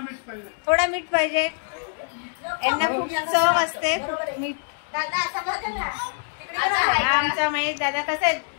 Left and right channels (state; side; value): silent; right; digital silence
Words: थोडा मीठ पाहिजे. यांना खूप चव असते खूप मीठ. आमचा महेश दादा कसं आहे,